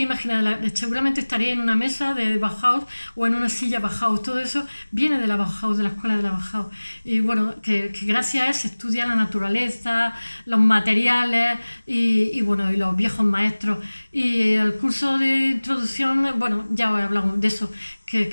imaginar, seguramente estaría en una mesa de Bauhaus o en una silla Bauhaus. Todo eso viene de la Bauhaus, de la escuela de la Bauhaus. Y bueno, que gracias a él se estudia la naturaleza, los materiales y los viejos maestros. Y el curso de introducción, bueno, ya os he hablado de eso, que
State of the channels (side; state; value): both; inverted; correlation -1.00